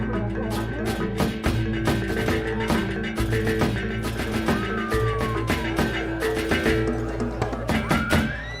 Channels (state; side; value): identical; both; correlation 1.00